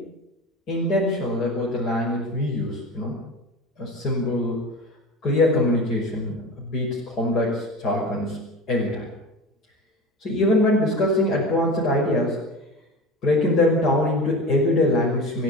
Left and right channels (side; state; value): both; normal; correlation 0.31